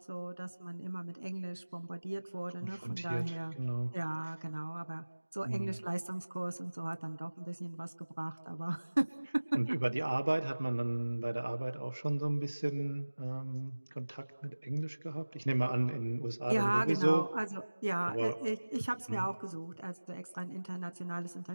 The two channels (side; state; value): both; inverted; correlation -1.00